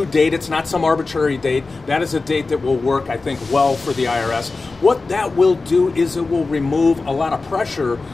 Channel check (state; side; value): quieter; right; 3.8 dB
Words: date. It's not some arbitrary date. That is a date that will work, I think, well for the IRS. What that will do is it will remove a lot of pressure